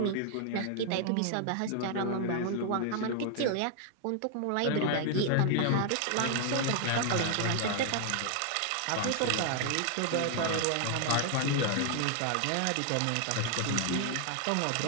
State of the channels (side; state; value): both; different; correlation 0.00